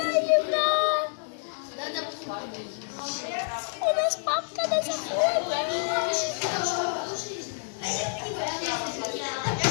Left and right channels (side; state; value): right; silent; digital silence